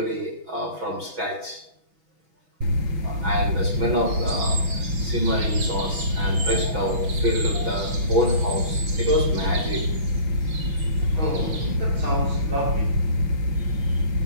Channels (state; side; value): late; left; 6.1 ms